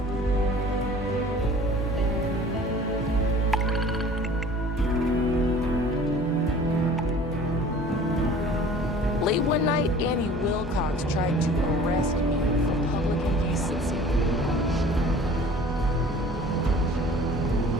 Late one night, Annie Wilcox tried to arrest me for public indecency.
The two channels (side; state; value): both; normal; correlation 0.46